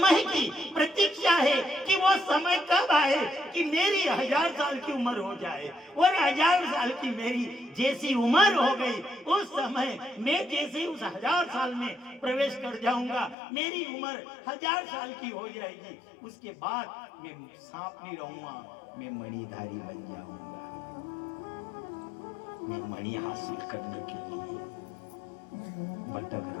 की प्रतीक्षा है कि वो समय कब आए कि मेरी 1000 साल की उम्र हो जाए, और 1000 साल की मेरी जैसी उम्र हो गई, उस समय मैं जैसे उस 1000 साल में प्रवेश कर जाऊंगा, मेरी उम्र 1000 साल की हो जाएगी। उसके बाद मैं सांप नहीं रहूंगा, मैं मणिधारी बन जाऊंगा। मैं मणि हासिल करने के लिए भटक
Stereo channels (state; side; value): drops out; right; at 13.4 s